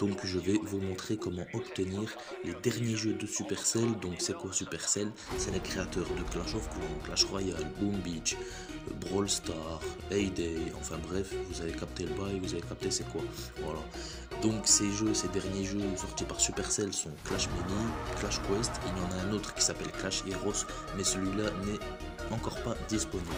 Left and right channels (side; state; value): both; identical; correlation 1.00